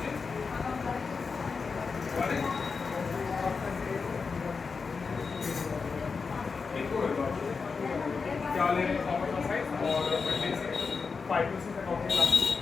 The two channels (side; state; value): right; quieter; 5.0 dB